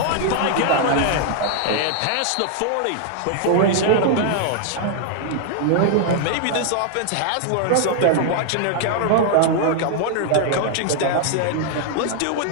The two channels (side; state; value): both; different; correlation 0.00